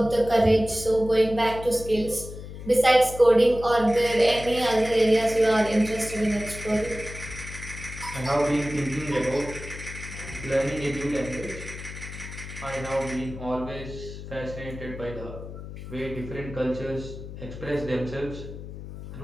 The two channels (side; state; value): left; noise; hum, 11 dB below the sound